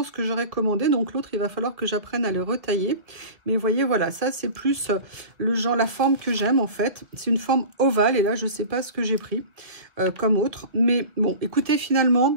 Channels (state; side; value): late; left; 1.7 ms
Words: ce que j'aurais commandé. Donc, l'autre, il va falloir que j'apprenne à le retailler. Mais vous voyez, voilà, ça, c'est plus le genre, la forme que j'aime, en fait. C'est une forme ovale, et là, je ne sais pas ce que j'ai pris comme autre. Mais bon, écoutez, finalement...